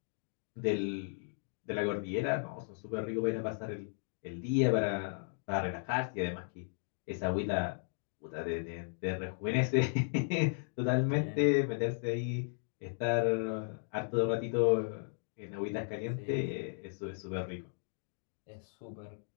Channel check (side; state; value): right; silent; digital silence